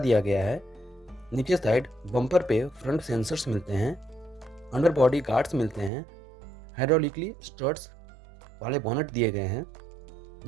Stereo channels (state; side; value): drops out; left; at 5.9 s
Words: गया है। नीचे साइड बम्पर पे फ्रंट सेंसर्स मिलते हैं। अंडर बॉडी गार्ड्स मिलते हैं। हाइड्रोलिकली स्टर्ट्स वाले बोनट दिए गए हैं,